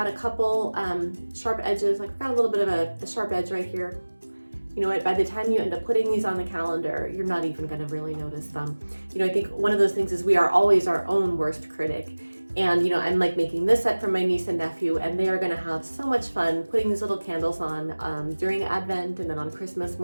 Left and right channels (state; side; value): inverted; both; correlation -1.00